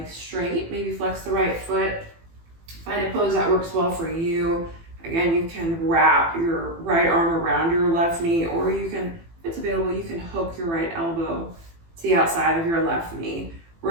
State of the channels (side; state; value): left; late; 18 ms